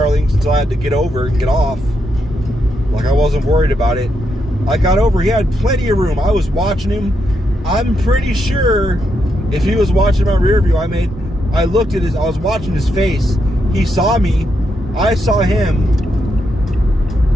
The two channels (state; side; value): normal; both; correlation 0.81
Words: links until I had to get over and get off, like I wasn't worried about it. I got over, he had plenty of room. I was watching him. I'm pretty sure if he was watching my rear view, I was watching his face. He saw me, I saw him.